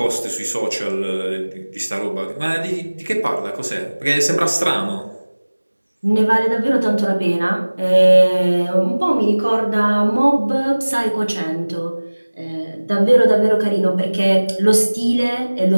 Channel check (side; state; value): both; inverted; correlation -1.00